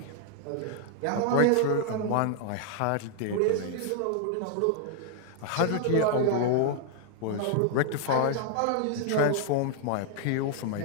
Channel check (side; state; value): both; different; correlation 0.00